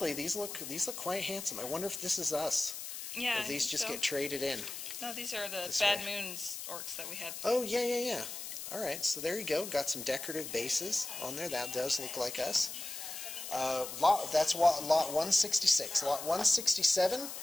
these look quite handsome. I wonder if this is us. yeah, Or these just get traded in. No, these are the This Bad way. Moons orcs that we had. Oh, yeah. All right, so there you go. Got some decorative bases on there. That does look like us. That's lot 166. Lot 167,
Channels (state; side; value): noise; left; hiss, 8 dB below the sound